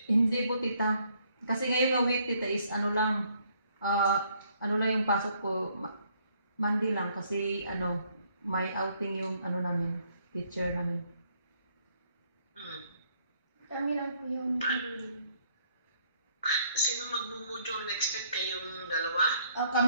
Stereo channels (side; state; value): both; inverted; correlation -0.67